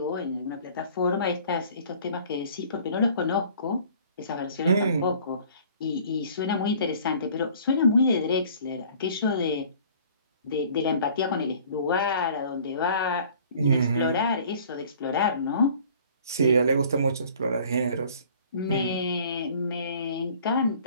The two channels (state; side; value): inverted; both; correlation -0.51